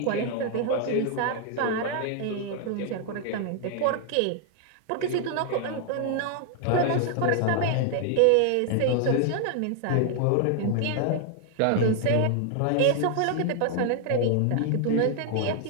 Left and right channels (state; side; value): different; both; correlation 0.00